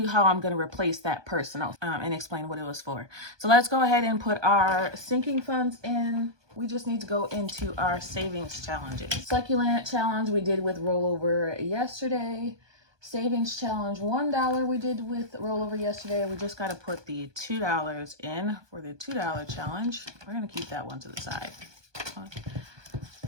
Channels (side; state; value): left; late; 1.2 ms